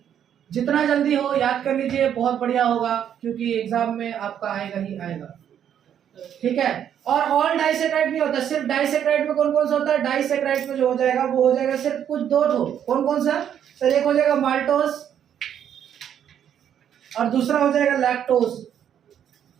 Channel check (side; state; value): left; quieter; 9.4 dB